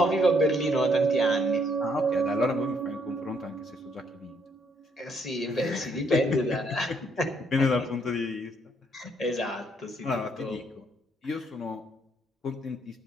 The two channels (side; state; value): both; normal; correlation 0.70